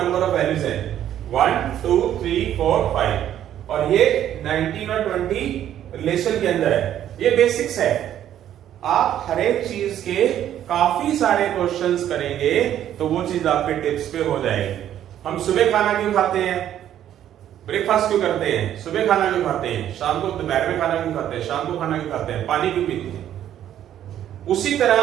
ऑफ वैल्यूज है 1 2 3 4 5, और ये 19 और 20 रिलेशन के अंदर है। ये बेसिक्स है, आप हर एक चीज के काफी सारे क्वेश्चंस करेंगे तो वो चीज आपके टिप्स पे हो जाएगी। हम सुबह खाना क्यों खाते हैं? ब्रेकफास्ट क्यों करते हैं? सुबह खाना क्यों खाते हैं? शाम को दोपहर में खाना क्यों खाते हैं? शाम को खाना क्यों खाते हैं? पानी क्यों पीते हैं? उसी तरह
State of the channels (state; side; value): quieter; left; 11.1 dB